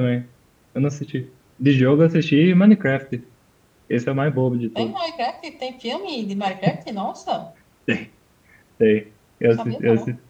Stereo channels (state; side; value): identical; both; correlation 1.00